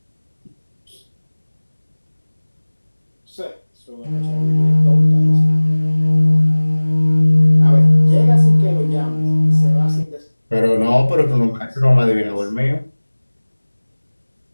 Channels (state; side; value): inverted; both; correlation -1.00